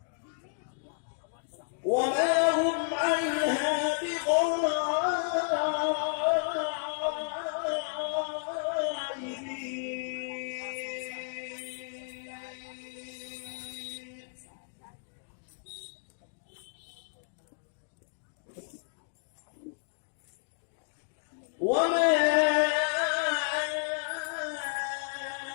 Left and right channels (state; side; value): silent; right; digital silence